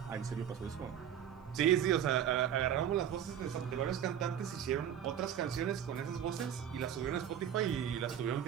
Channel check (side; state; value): left; quieter; 9.5 dB